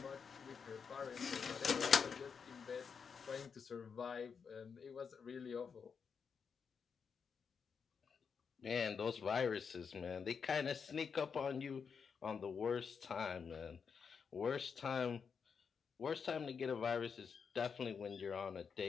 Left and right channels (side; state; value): right; quieter; 6.2 dB